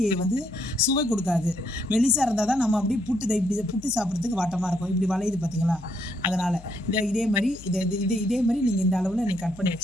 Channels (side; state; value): left; noise; hum, 19 dB below the sound